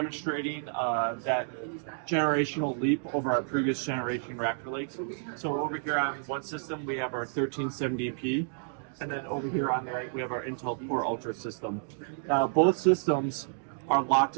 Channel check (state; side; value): silent; left; digital silence